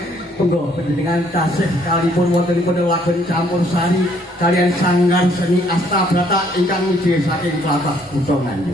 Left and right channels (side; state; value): both; normal; correlation 0.65